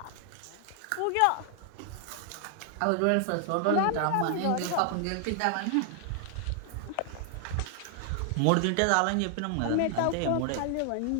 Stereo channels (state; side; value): different; both; correlation 0.00